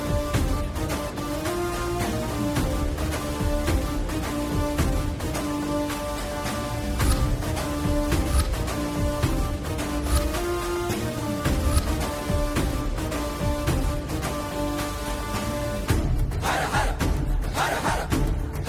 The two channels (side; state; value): both; identical; correlation 1.00